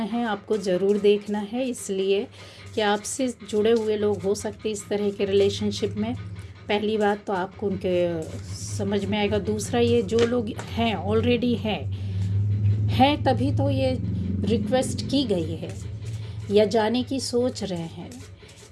है आपको, ज़रूर देखना है, इसलिए कि आपसे जुड़े हुए लोग हो सकते इस तरह के रिलेशनशिप में। पहली बात तो आपको उनके समझ में आएगा। दूसरा, ये जो लोग हैं ऑलरेडी हैं तभी तो ये रिक्वेस्ट की गई है या जाने की सोच रहे हैं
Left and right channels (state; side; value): identical; both; correlation 1.00